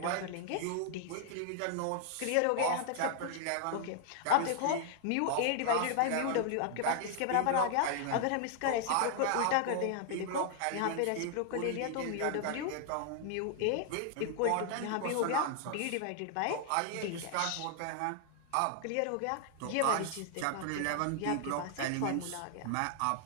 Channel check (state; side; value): different; both; correlation 0.00